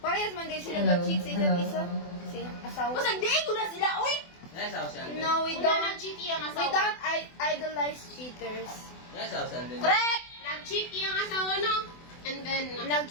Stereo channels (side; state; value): right; late; 24 ms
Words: man din sila Hello, mag-cheat sa isa't hello. isa. Si asawa. Mas nagdigo na sila, uy! No, we Una don't. nag-cheat yung We asawa. don't idolize cheaters. Correct! Nag-cheat yung asawa, no? And then,